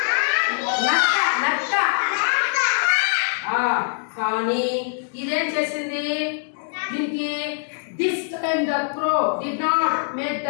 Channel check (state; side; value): silent; right; digital silence